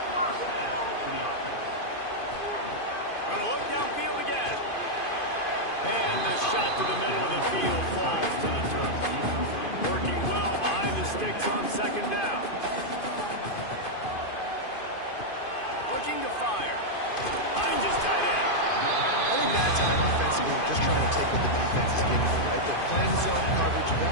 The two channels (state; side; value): late; right; 2.5 ms